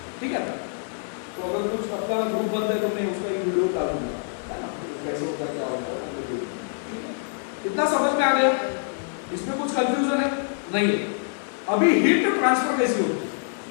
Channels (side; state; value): right; silent; digital silence